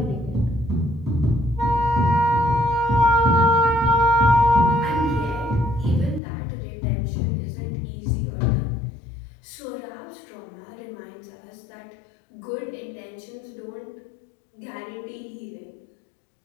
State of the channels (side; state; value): right; drops out; at 6.2 s